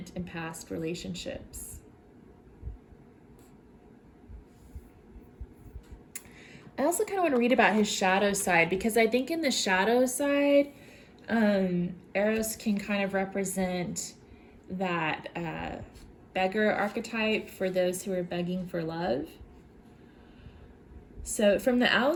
and past relationships. I also kind of want to read about his shadow side, because I think in the shadow side, Eros can kind of represent that beggar archetype for those who are begging for love. So from the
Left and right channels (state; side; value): identical; both; correlation 1.00